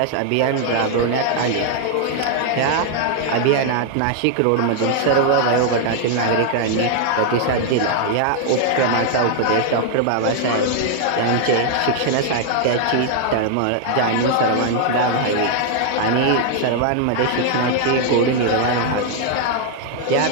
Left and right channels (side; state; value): both; different; correlation 0.00